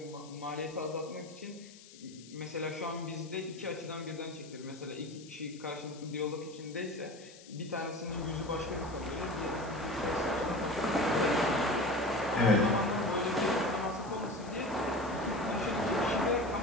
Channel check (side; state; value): left; noise; hiss, 20 dB below the sound